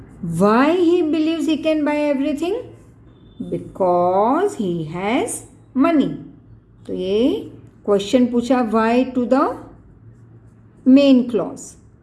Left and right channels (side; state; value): both; identical; correlation 1.00